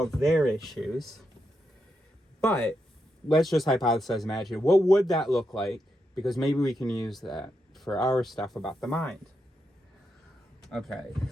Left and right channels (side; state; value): both; normal; correlation 0.84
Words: their issues, but let's just hypothesize, imagine, what would that look like? Because maybe we can use that for our stuff about the mind. Okay,